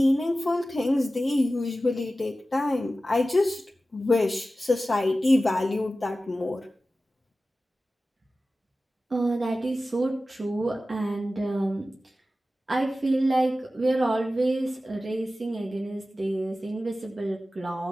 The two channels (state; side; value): normal; both; correlation 0.95